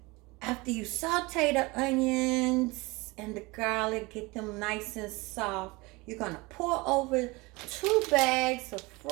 After you saute the onions and the garlic, get them nice and soft, you're going to pour over 2 bags of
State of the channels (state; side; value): quieter; left; 24.2 dB